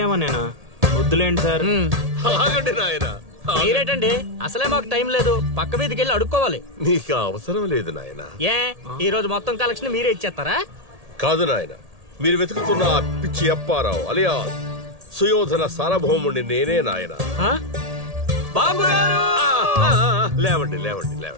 నేనా? వద్దులేండి సార్. ఆగండి నాయనా. మీరేటండి, అసలే మాకు టైం లేదు. పక్క వీధికి వెళ్ళి అడుక్కోవాలి. నీకు అవసరం లేదు నాయనా. ఏ ఈ రోజు మొత్తం కలెక్షన్ మీరే ఇచ్చేస్తారా? కాదు నాయన, మీరు వెతుకుతున్న ఆ పిచ్చి అప్పారావు అలియా సుయోధన సార్వభౌముడిని నేనే నాయన. బాబు గారు, లేవండి లేవండి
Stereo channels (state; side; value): late; left; 1.8 ms